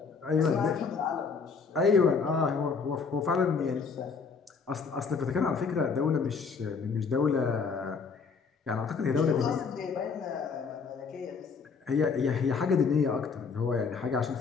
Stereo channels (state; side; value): quieter; right; 5.3 dB